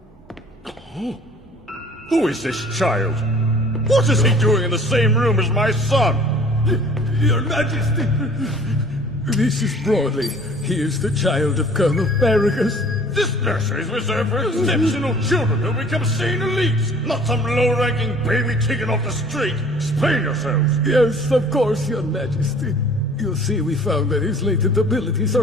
Oh. Who is this child? What is he doing in the same room as my son? Your Majesty, this is Broly. He is the child of Colonel Paragus. This nursery is reserved for exceptional children who become Saiyan elites, not some low-ranking baby taken off the street. Explain yourselves. Yes, of course, Your Majesty. You'll see we found that his latent abilities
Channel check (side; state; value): both; normal; correlation 0.51